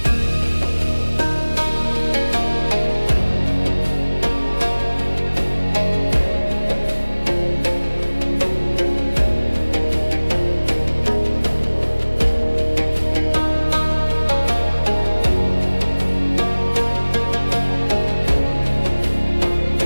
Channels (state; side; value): inverted; both; correlation -1.00